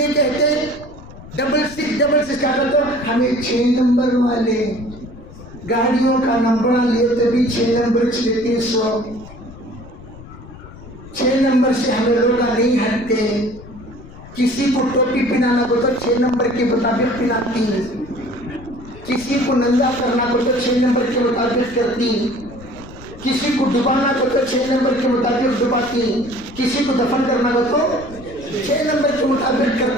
کہتے، 6666 کیا کرتے ہو؟ ہمیں 6 نمبر والے گاڑیوں کا نمبر لیے تبھی 6 نمبر چلتے، 6 نمبر سے ہمیں لوگ نہیں ہٹتے، کسی کو ٹوپی پہنانا کو تو 6 نمبر کے مطابق پہناتی، کسی کو ننگا کرنا کو تو 6 نمبر کے مطابق کرتی، کسی کو ڈبانا کو تو 6 نمبر کے مطابق ڈباتی، کسی کو دفن کرنا کو تو 6 نمبر کے مطابق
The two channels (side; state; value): left; noise; rumble, 17 dB below the sound